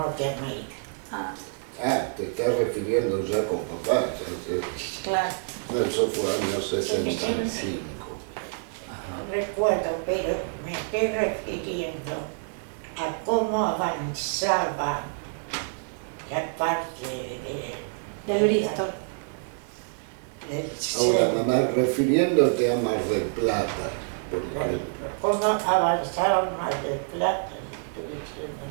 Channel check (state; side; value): silent; left; digital silence